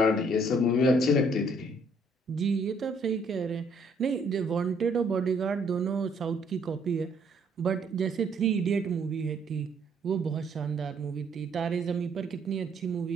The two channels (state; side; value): normal; both; correlation 0.65